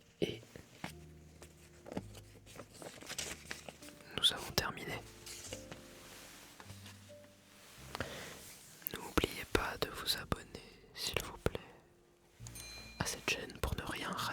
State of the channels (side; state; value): both; identical; correlation 1.00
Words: Et nous avons terminé. N'oubliez pas de vous abonner, s'il vous plaît, à cette chaîne pour ne rien